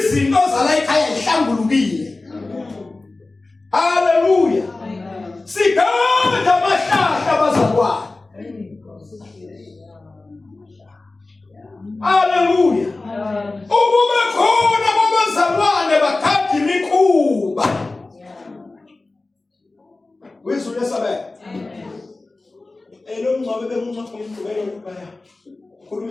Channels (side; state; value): right; quieter; 3.3 dB